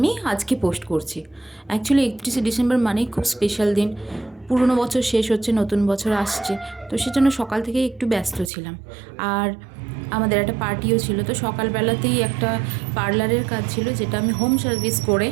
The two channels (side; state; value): left; drops out; at 8.5 s